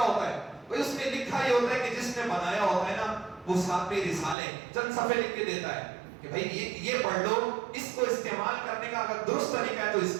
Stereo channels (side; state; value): left; drops out; at 4.4 s